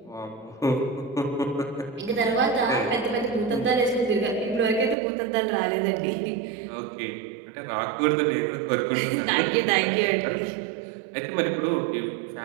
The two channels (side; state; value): left; drops out; at 5.0 s